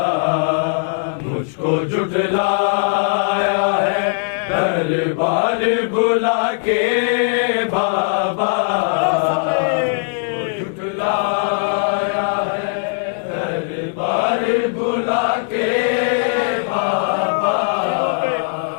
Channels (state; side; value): silent; right; digital silence